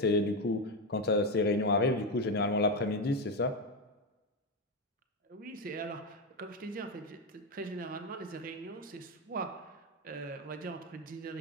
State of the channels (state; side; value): normal; both; correlation 0.11